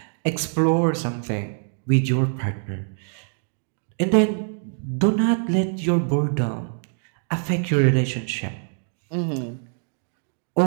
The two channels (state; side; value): silent; left; digital silence